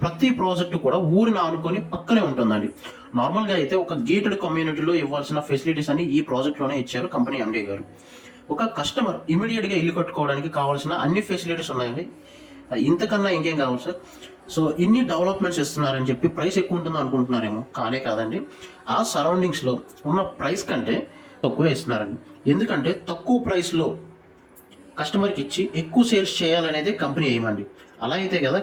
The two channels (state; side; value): identical; both; correlation 1.00